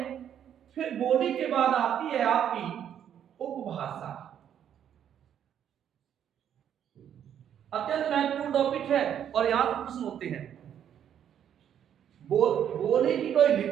फिर बोली के बाद आती है आपकी उपभाषा। अत्यंत महत्वपूर्ण टॉपिक है और यहां पर प्रश्न होते हैं। बोली की कोई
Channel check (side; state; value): left; quieter; 9.4 dB